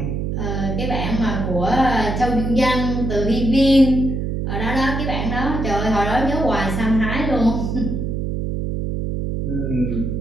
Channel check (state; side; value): noise; right; hum, 2 dB below the sound